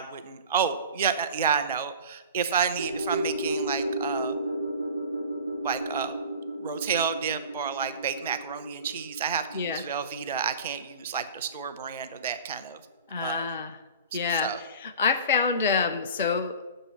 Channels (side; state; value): both; inverted; correlation -0.39